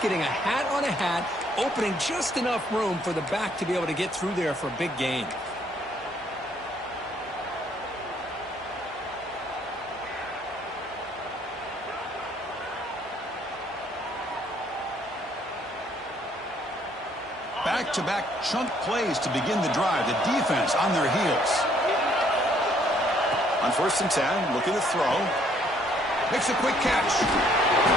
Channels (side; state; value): both; normal; correlation 0.65